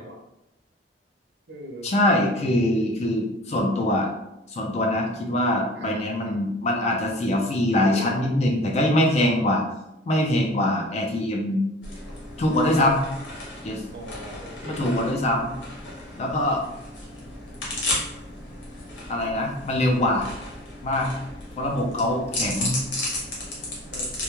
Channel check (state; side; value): normal; both; correlation 0.40